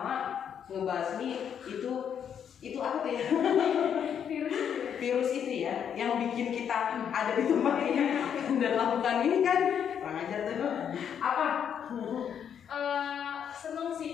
ngebasmi itu apa ya? Virus itu ya, yang bikin kita ada di tempat ini dan lakukan ini kan. kurang ajar tuh. Apa? Seneng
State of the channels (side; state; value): right; quieter; 8.3 dB